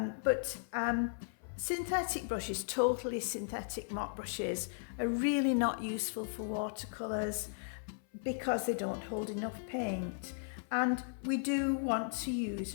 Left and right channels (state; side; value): silent; right; 54 dB below the other